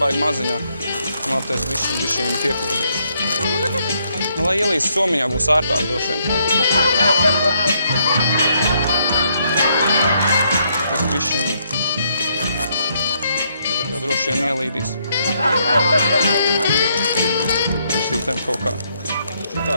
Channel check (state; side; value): inverted; both; correlation -0.73